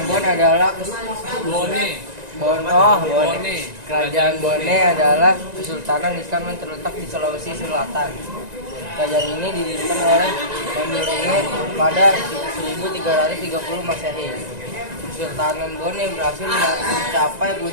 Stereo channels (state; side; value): late; left; 1.9 ms